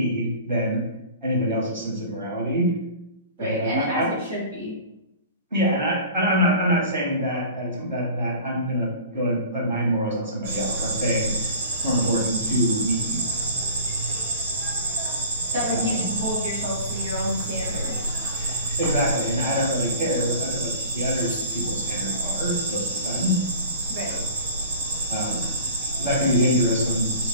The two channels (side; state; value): both; inverted; correlation -0.42